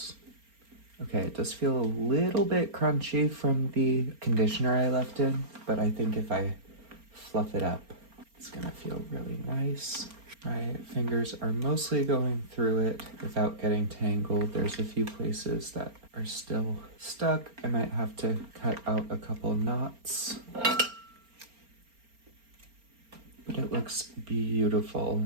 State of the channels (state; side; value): late; left; 4.3 ms